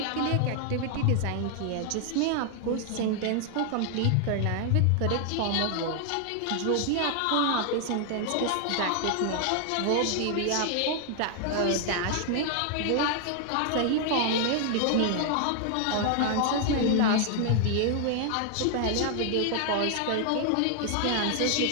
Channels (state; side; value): different; both; correlation 0.00